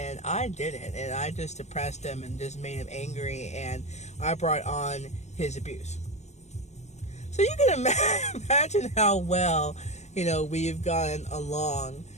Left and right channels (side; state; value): right; late; 0.33 ms